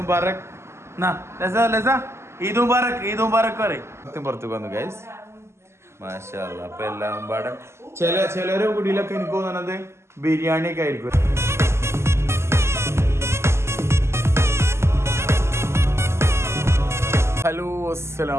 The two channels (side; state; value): left; late; 0.13 ms